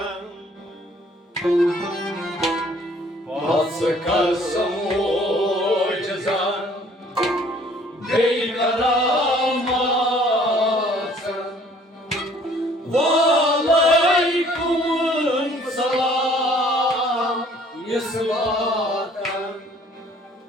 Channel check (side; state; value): both; normal; correlation 0.57